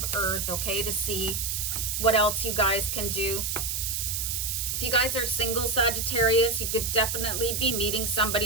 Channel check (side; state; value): right; noise; hiss, 1 dB below the sound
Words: Earth, okay, to see what else you guys can do. If you guys are single Sagittarius, you could definitely be meeting